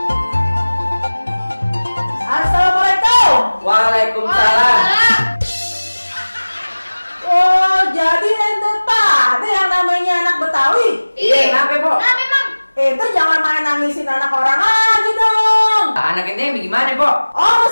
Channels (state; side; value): inverted; both; correlation -1.00